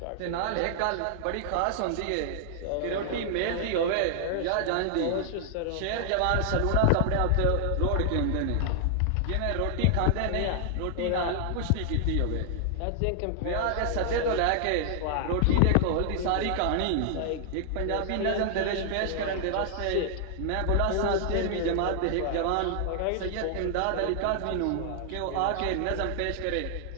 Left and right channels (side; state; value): both; different; correlation 0.00